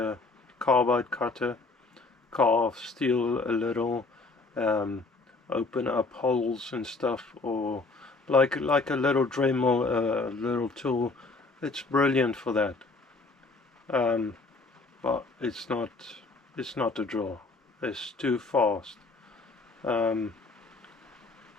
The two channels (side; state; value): right; quieter; 3.7 dB